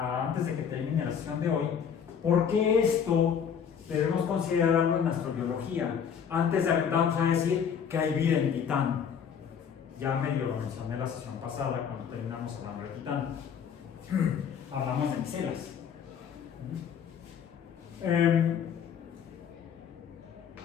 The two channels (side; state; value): right; quieter; 7.6 dB